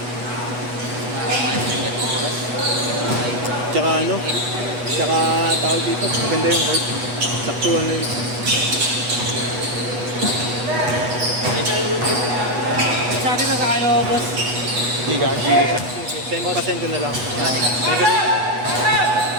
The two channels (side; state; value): left; late; 8.2 ms